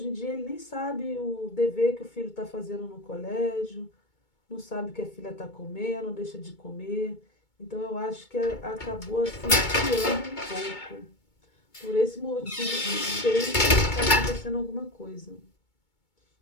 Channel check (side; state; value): right; late; 2.2 ms